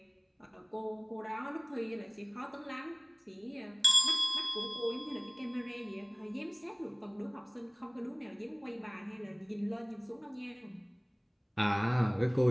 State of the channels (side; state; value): both; identical; correlation 1.00